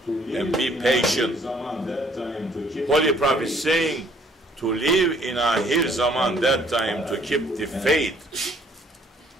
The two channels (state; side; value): normal; both; correlation 0.62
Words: and be patient. Holy Prophet saying to live in Ahir Zaman, that time, to keep the faith.